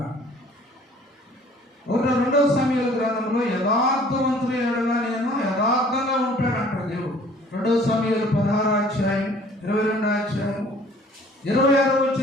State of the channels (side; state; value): both; normal; correlation 0.53